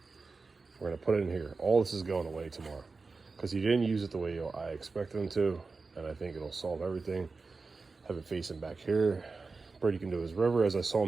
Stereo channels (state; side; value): quieter; left; 4.1 dB